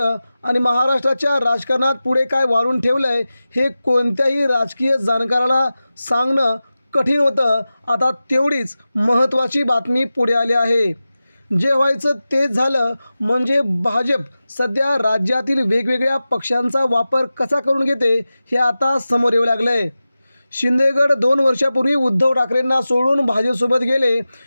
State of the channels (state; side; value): inverted; both; correlation -0.95